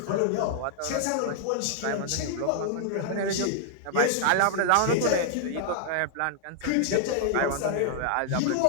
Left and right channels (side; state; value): both; different; correlation -0.01